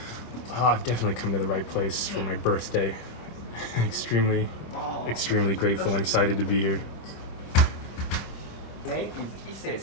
I've definitely come to the right place for my birthday. extremely grateful and excited to be here. Name is Ise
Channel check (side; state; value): right; late; 25 ms